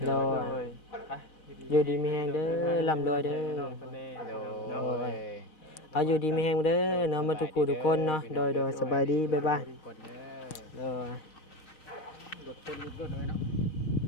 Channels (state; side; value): late; right; 6.5 ms